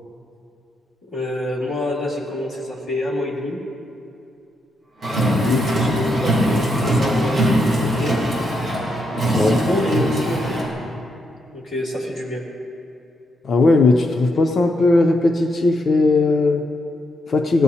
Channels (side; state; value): both; normal; correlation 0.80